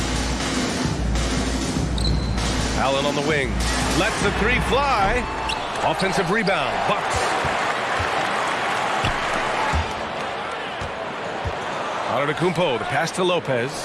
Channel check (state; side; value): identical; both; correlation 1.00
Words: Allen on the wing. Lets the three fly. Offensive rebound. Bucks. Antetokounmpo, the pass to Lopez.